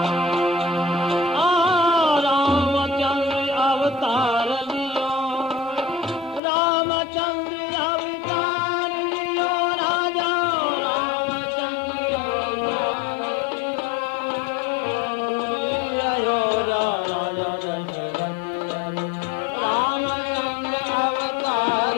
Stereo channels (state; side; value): drops out; right; at 6.4 s